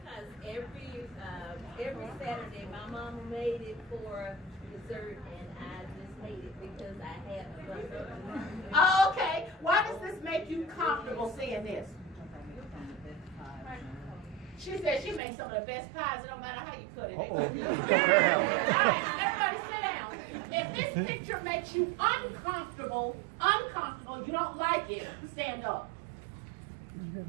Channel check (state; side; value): drops out; left; at 15.2 s